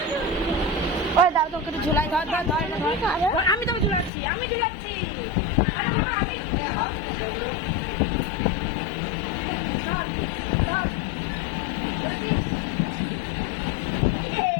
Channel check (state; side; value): drops out; right; at 4.1 s